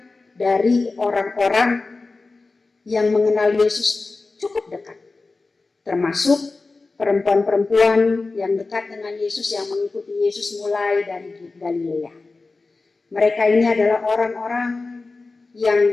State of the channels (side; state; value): right; quieter; 3.7 dB